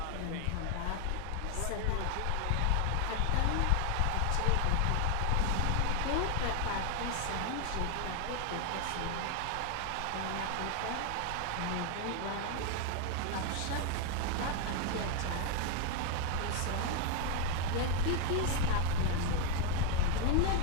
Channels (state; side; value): different; both; correlation 0.01